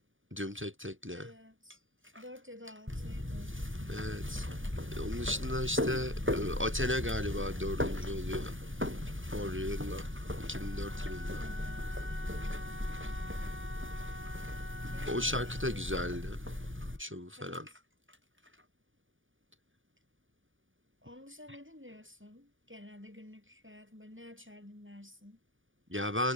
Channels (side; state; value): left; late; 0.57 ms